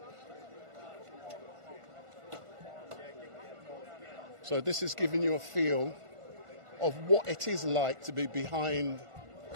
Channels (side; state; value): left; late; 1.5 ms